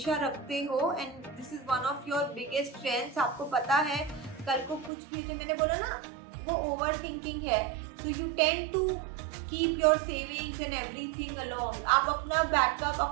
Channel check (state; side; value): drops out; left; at 4.9 s